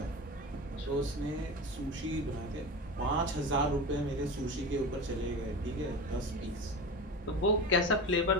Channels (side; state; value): both; normal; correlation 0.28